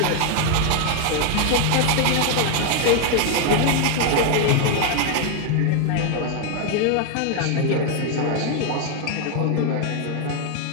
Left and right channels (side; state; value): both; different; correlation 0.01